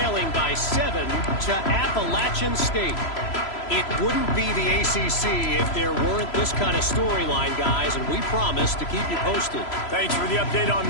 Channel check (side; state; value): right; late; 3.0 ms